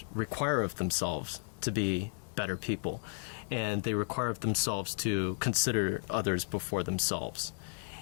require of themselves to be better people, and they require of themselves to consider others before themselves.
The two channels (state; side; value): silent; right; 55 dB below the other